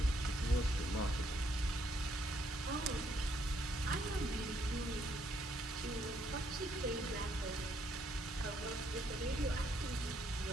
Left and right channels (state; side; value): normal; both; correlation 0.71